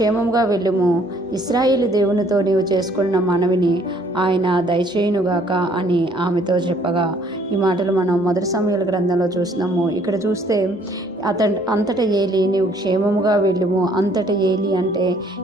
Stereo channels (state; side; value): normal; both; correlation 0.62